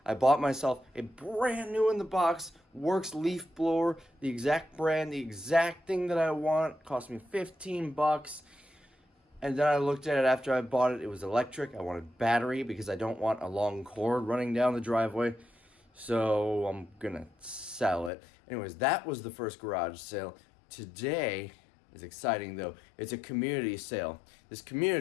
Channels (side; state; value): right; drops out; at 18.1 s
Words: I bought myself a brand new in the box Works leaf blower, the exact brand, the exact thing that I want. It cost me 15 bucks. And then I looked at it after I bought it. It was electric. I wanted battery because I don't want a long cord running down the driveway. So I'm gonna sell it. Anyways, that was the first garage sale. Today is exciting though. It's a community sale. This